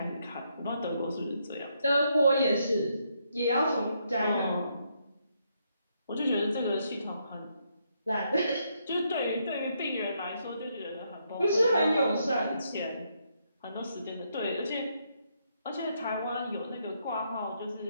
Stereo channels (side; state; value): both; inverted; correlation -0.76